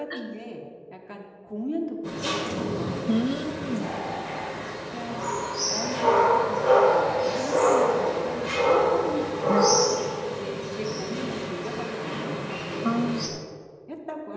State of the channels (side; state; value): both; identical; correlation 1.00